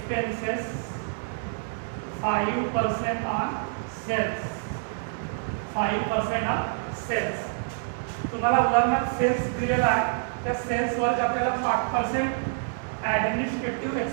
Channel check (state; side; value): silent; left; digital silence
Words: 5% on sales. 5% on sales. तुम्हाला उदाहरणार्थ सेल्स दिलेला आहे, त्या सेल्सवर आपल्याला 5% ॲडमिनिस्ट्रेटिव्ह